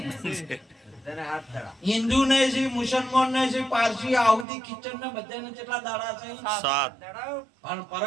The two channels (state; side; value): drops out; left; at 4.5 s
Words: હિન્દુ ને છે, મુસલમાન ને છે, પારસી, આહુદી, કિચન ને બધાને કેટલા દાડા છે? 7. પણ